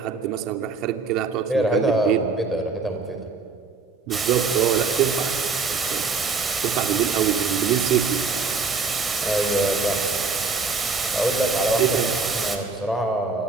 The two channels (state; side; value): quieter; left; 4.6 dB